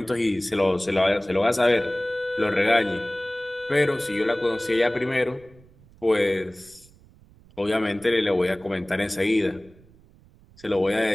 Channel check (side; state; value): right; noise; rumble, 26 dB below the sound